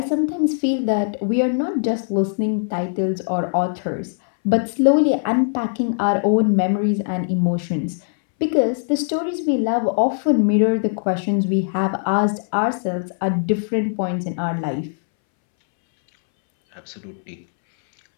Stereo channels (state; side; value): silent; right; 64 dB below the other